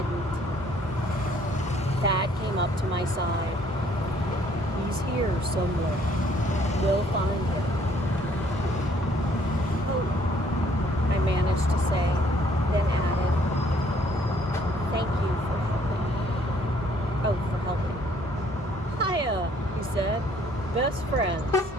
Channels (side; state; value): both; normal; correlation 0.62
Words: Thad came up to my side. "He's here somewhere. We'll find him." "Oh," I managed to say, then added, "Thank you for helping." "Oh, for helping." "Hiya," he said. "Best friends."